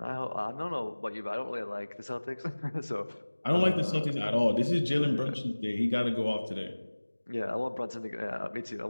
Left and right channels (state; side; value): inverted; both; correlation -1.00